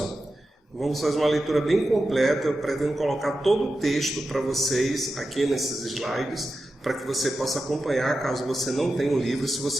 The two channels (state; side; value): normal; both; correlation 0.91